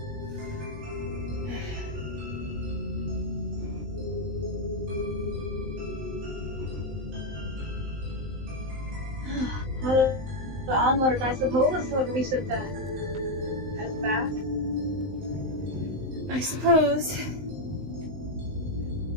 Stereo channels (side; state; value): left; late; 19 ms